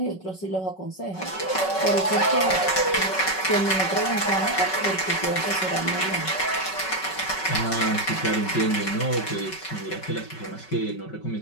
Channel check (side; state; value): right; late; 5.3 ms